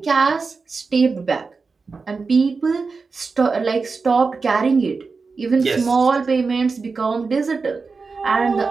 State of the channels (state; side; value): quieter; left; 4.5 dB